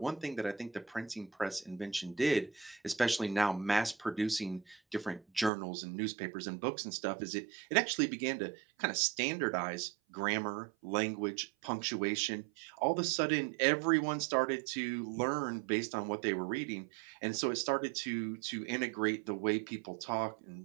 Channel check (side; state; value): left; drops out; at 5.5 s